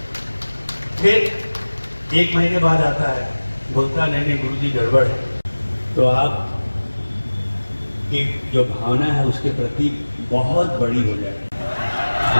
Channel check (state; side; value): inverted; both; correlation -1.00